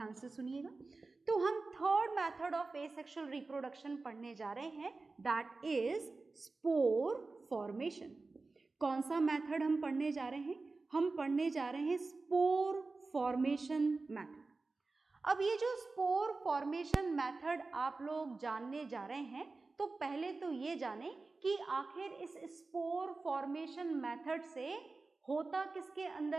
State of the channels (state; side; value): quieter; left; 3.7 dB